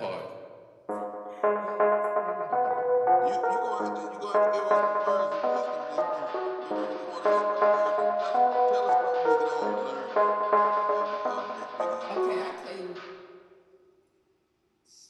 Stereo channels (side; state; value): both; identical; correlation 1.00